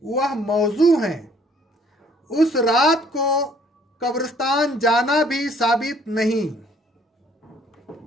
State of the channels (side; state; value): both; normal; correlation 0.60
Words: वह मौजू हैं। उस रात को कब्रिस्तान जाना भी साबित नहीं।